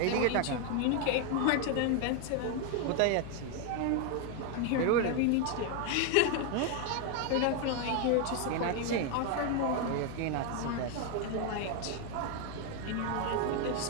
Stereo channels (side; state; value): both; different; correlation 0.01